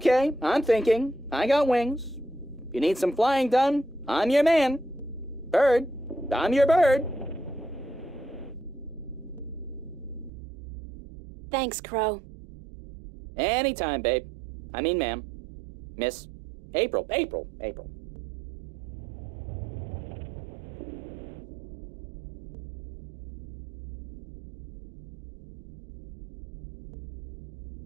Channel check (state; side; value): drops out; left; at 10.3 s